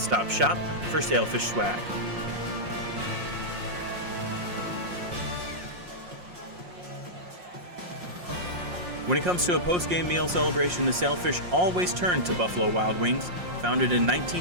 shop for Sailfish swag. When it comes to a post-game meal celebration, the Sailfish always turn to Buffalo Wild Wings. Founded in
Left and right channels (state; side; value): late; left; 5.6 ms